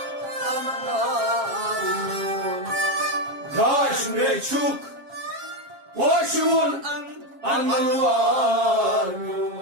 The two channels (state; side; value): late; left; 7.4 ms